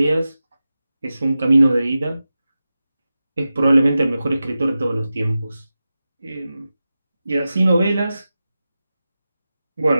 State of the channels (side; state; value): both; inverted; correlation -0.93